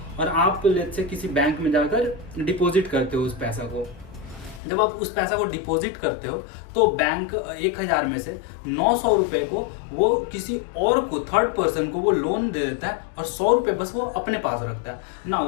और आप लेट्स से किसी बैंक में जाकर डिपॉजिट करते हो उस पैसा को। जब आप उस पैसा को डिपॉजिट करते हो तो बैंक 1,000 में से 900 रुपए को वो किसी और को, थर्ड पर्सन को वो लोन दे देता है, और 100 रुपए बस वो अपने पास रखता है ना।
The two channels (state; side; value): drops out; right; at 4.6 s